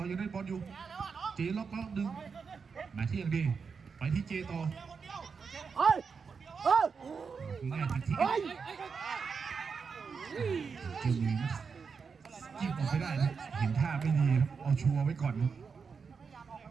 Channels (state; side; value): quieter; left; 5.6 dB